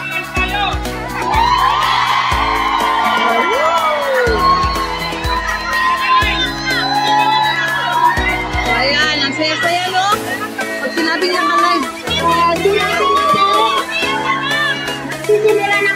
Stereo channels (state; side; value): identical; both; correlation 1.00